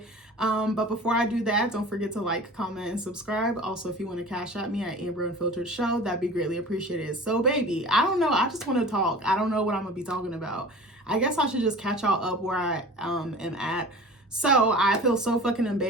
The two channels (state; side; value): normal; both; correlation 0.39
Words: But before I do that, don't forget to like, comment, and subscribe. Also, if you want to cash at me at Amber Unfiltered Show, that'd be greatly appreciated. So baby, I don't know. I just want to talk. I don't know what I'm gonna be talking about. I guess I should just catch y'all up where I am at. So I feel so fucking